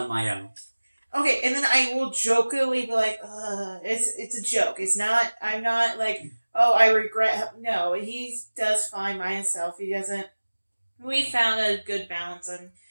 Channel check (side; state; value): both; inverted; correlation -1.00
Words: my own. Okay, and then I will jokingly be like, it's a joke. I'm not like, oh, I regret. No, he does fine by himself. He doesn't. We found a good balance on